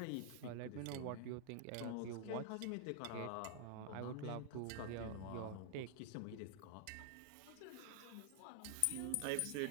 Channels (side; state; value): both; different; correlation -0.01